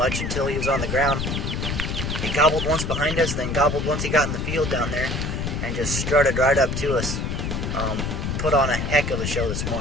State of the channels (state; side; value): noise; left; rumble, 2 dB below the sound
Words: until he was on the ground. He gobbled once behind us, then gobbled once he got in the field down there, and just strutted right up to us. Put on a heck of a show this